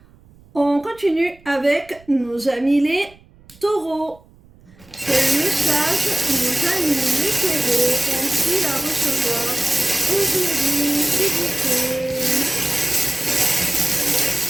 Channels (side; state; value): right; noise; rumble, 27 dB below the sound